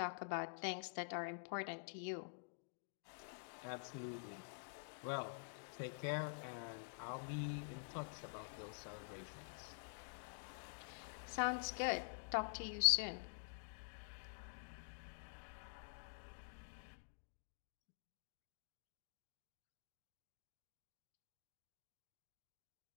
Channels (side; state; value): right; silent; digital silence